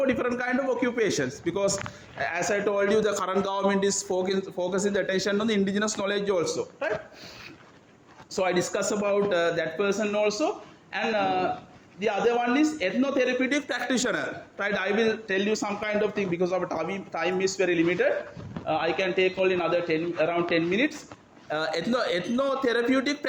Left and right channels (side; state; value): both; identical; correlation 1.00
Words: different kind of occupations, because as I told you, the current government is focusing the attention on the indigenous knowledge also, right? So I discuss about that person also. And the other one is ethnotherapeutic practitioner, right? I will tell you some kind of thing, because our time is very limited. I can take only another around 10 minutes. Ethnotherapeutic